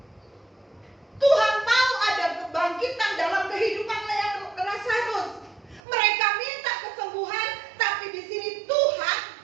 Tuhan mau ada kebangkitan dalam kehidupan Lazarus. Mereka minta kesembuhan, tapi di sini Tuhan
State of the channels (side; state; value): left; drops out; at 5.8 s